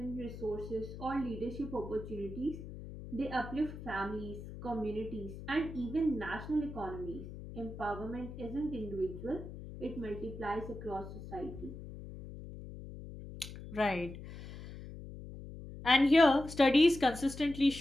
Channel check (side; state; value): left; noise; hum, 12 dB below the sound